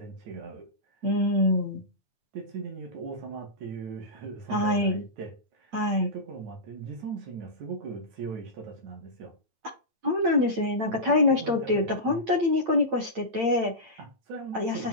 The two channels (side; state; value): left; late; 8.8 ms